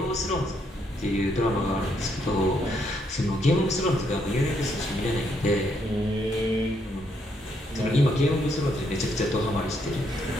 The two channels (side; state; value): both; normal; correlation 0.74